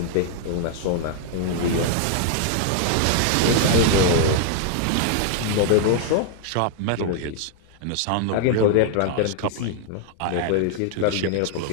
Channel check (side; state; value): both; different; correlation 0.00